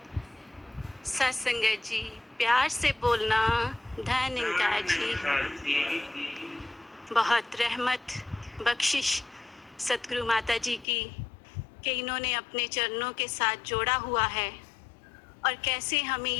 सत्संगत जी, प्यार से बोलना। धन इनका जी, बहुत रहमत बख्शिश सतगुरु माता जी की कि इन्होंने अपने चरणों के साथ जोड़ा हुआ है और कैसे हमें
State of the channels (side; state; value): right; drops out; at 10.9 s